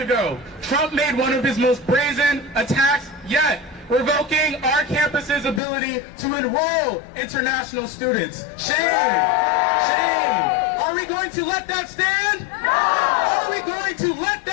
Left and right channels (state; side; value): drops out; right; at 5.6 s